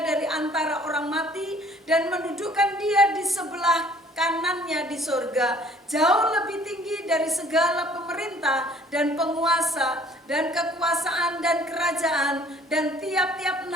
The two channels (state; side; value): normal; both; correlation 0.56